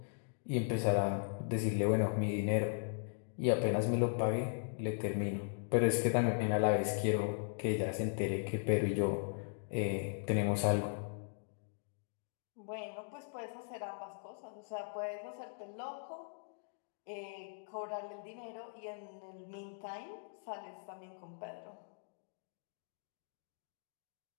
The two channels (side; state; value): right; silent; digital silence